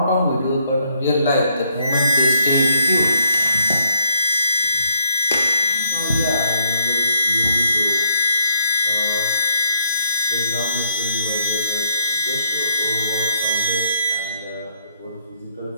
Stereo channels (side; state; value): both; inverted; correlation -0.69